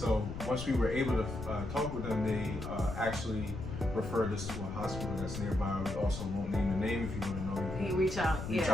once we were able to talk with them, they actually referred us to a hospital that's nearby. We also won't name the name. If you want to know, you can reach out. Reach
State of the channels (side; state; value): left; noise; rumble, 7 dB below the sound